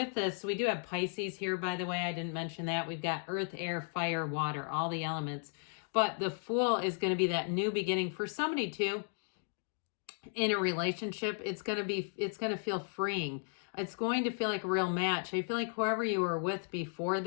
this, we do have Pisces here, by the way. I didn't mention that. We've got earth, air, fire, water, all the elements. But the Fool is going to be that new beginning for somebody too. In a relationship, it's going to feel freeing. It's going to feel like a real match. I feel like whoever you were with before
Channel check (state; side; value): silent; right; 54 dB below the other